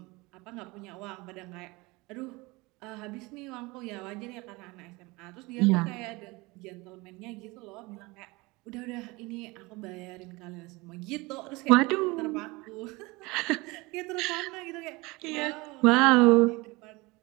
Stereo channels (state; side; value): quieter; left; 23.8 dB